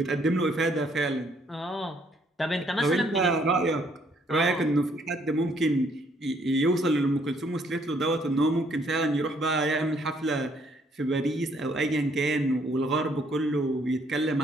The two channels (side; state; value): both; normal; correlation 0.67